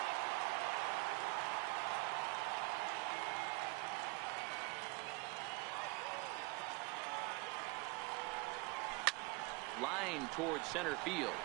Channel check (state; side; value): quieter; left; 25.4 dB